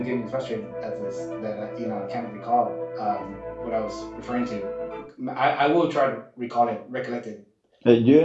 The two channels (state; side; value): identical; both; correlation 1.00